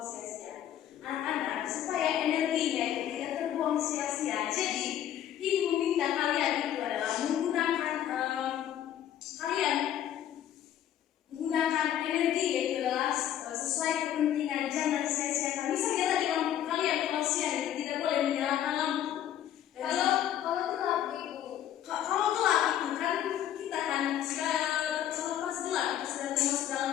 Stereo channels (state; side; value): quieter; right; 11.0 dB